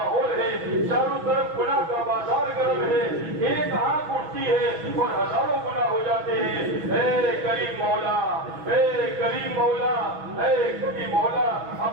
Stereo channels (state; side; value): late; left; 6.1 ms